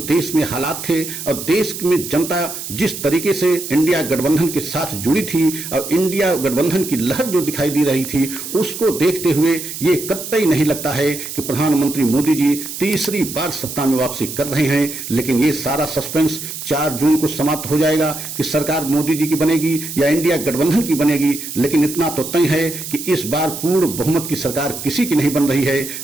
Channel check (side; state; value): right; noise; hiss, 8 dB below the sound